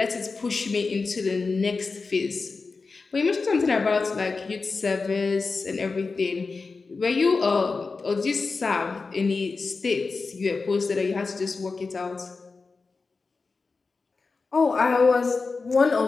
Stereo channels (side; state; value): right; quieter; 4.2 dB